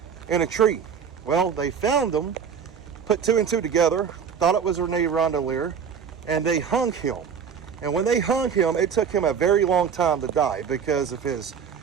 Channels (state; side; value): quieter; left; 7.0 dB